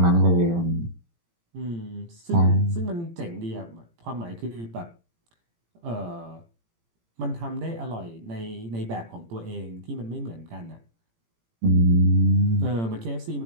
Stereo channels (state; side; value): late; left; 18 ms